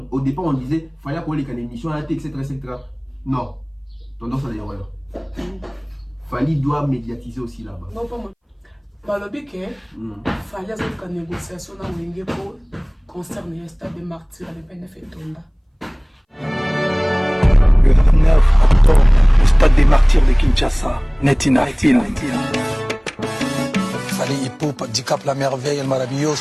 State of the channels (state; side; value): identical; both; correlation 1.00